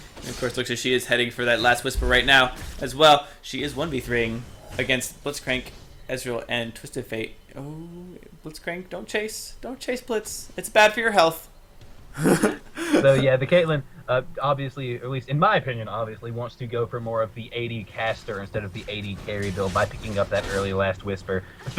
And of course, looks like she is heading for that last Whisper right now as well. She is 1v3ing against Blitzcrank, Ezreal, and Twisted Fate. Oh, Blitzcrank, don't chase. Don't chase Blitz. It's bad for your health. So yeah, the Caitlyn, obviously, or at least in my opinion, obviously wants to go for more of the AD caster instead of the AD carry build by picking up that early last Whisper,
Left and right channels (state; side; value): identical; both; correlation 1.00